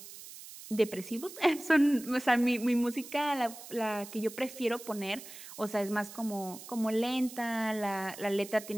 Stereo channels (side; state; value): right; noise; hiss, 15 dB below the sound